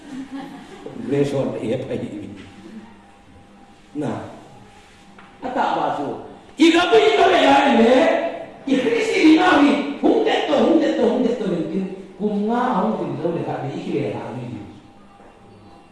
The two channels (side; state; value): both; identical; correlation 1.00